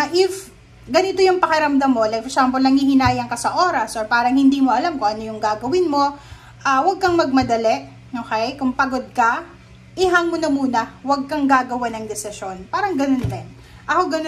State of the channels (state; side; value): identical; both; correlation 1.00